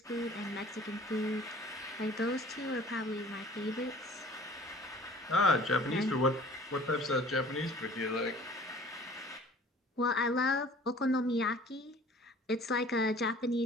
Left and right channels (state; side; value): normal; both; correlation 0.49